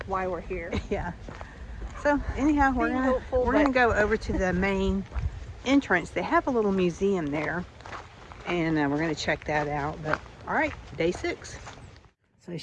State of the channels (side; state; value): both; identical; correlation 1.00